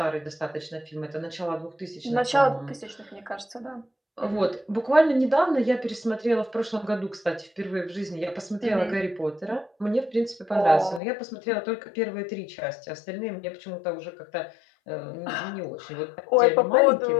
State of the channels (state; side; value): drops out; right; at 11.0 s